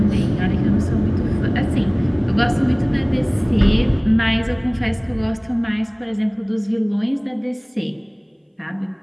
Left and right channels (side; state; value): both; identical; correlation 1.00